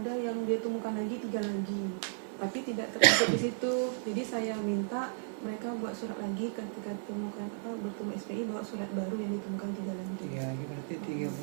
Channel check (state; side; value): silent; left; digital silence